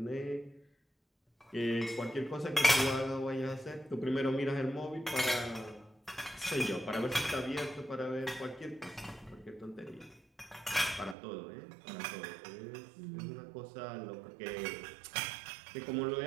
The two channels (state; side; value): drops out; left; at 11.2 s